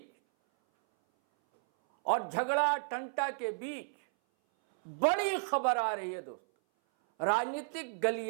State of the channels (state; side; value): silent; left; 56 dB below the other